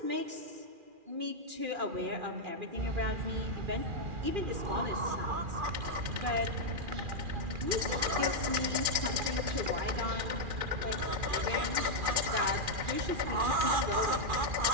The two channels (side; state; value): left; late; 2.4 ms